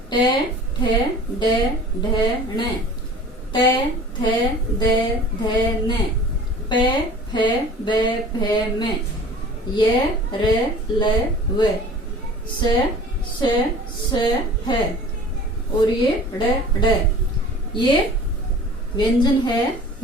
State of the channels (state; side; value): normal; both; correlation 0.44